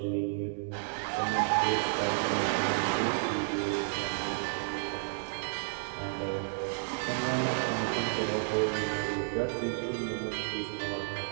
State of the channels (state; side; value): silent; left; digital silence